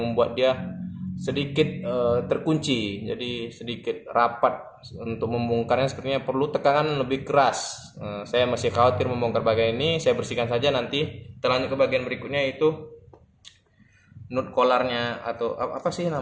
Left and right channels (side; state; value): both; identical; correlation 1.00